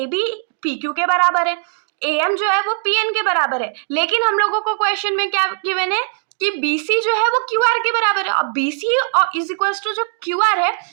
PQ के बराबर है, AM जो है वो PN के बराबर है। लेकिन हम लोगों को क्वेश्चन में क्या गिवन है कि BC जो है वो QR के बराबर है। और BC और इज इक्वल्स टू जो QR है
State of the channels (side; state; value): left; silent; digital silence